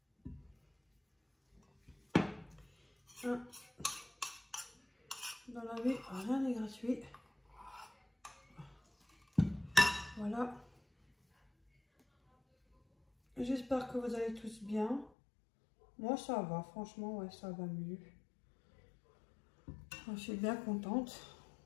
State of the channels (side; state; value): right; drops out; at 15.1 s